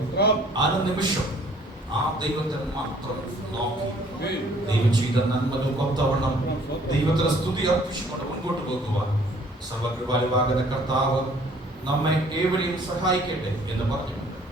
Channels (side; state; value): both; normal; correlation 0.58